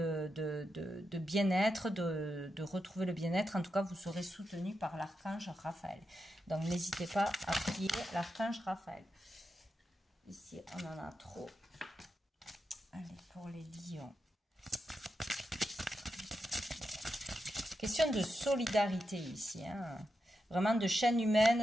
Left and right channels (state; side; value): normal; both; correlation 0.87